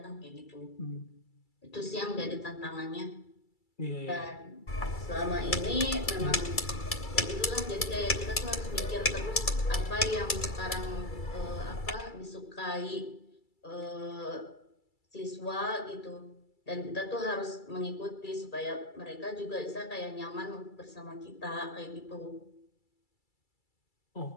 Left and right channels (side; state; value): right; late; 2.3 ms